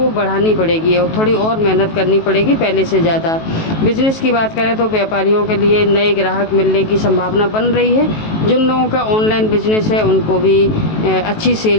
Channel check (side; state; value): right; late; 18 ms